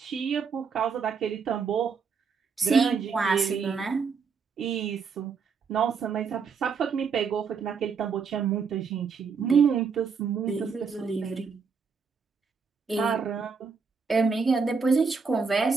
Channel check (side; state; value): left; quieter; 5.5 dB